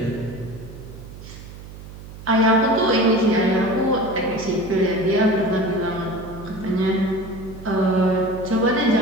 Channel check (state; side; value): noise; right; hum, 15 dB below the sound